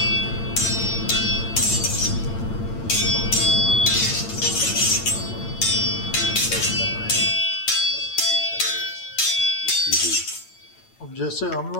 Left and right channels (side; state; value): right; late; 8.9 ms